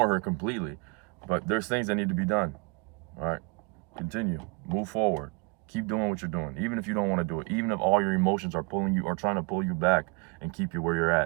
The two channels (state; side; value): quieter; left; 30.8 dB